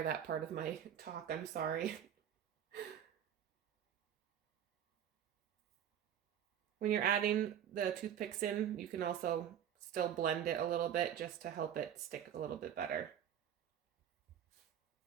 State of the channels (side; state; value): left; quieter; 9.7 dB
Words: that part of my talk. I'm sorry. When you're adding the toothpicks in, you can also still blend it a little bit just to help it stick a little bit better.